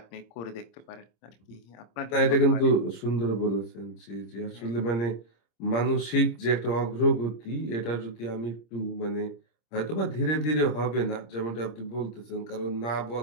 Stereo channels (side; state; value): right; late; 26 ms